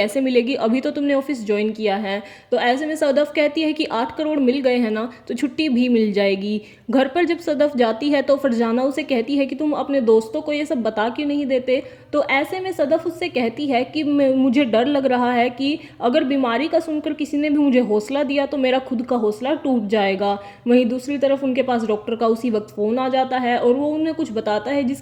मिलेगी, अभी तो तुमने ऑफिस ज्वाइन किया है। तो ऐसे में सदफ कहती है कि 8 करोड़ मिल गए हैं ना तो छुट्टी भी मिल जाएगी। घर पर जब सदफ जाती है तो फरजाना उसे कहती है कि तुम अपने दोस्तों को ये सब बता क्यों नहीं देते। तो ऐसे में सदफ उससे कहती है कि मुझे डर लग रहा है कि अगर बीमारी का सुनकर किसी ने भी मुझे हौसला दिया तो मेरा खुद का हौसला टूट जाएगा। वहीं दूसरी तरफ उनके पास डॉक्टर का उसी वक्त फ़ोन आ जाता है और वो उन्हें कुछ बताता है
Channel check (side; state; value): both; identical; correlation 1.00